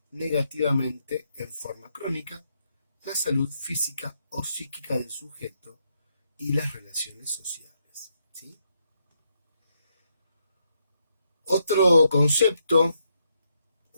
negativamente en forma crónica la salud física o psíquica del sujeto y las relaciones sociales. ¿Sí? Otro concepto,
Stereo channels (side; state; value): both; inverted; correlation -0.78